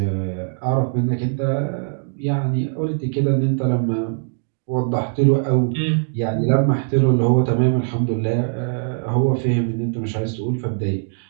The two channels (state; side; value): silent; left; digital silence